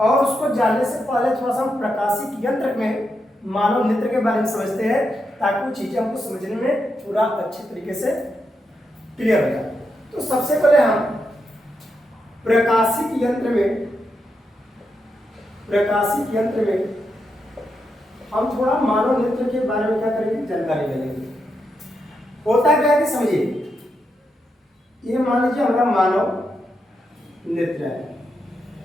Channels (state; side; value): normal; both; correlation 0.84